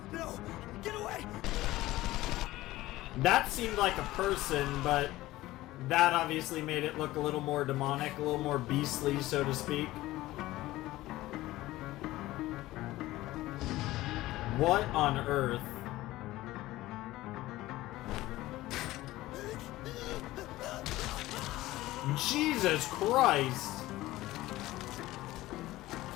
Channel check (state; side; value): quieter; right; 17.1 dB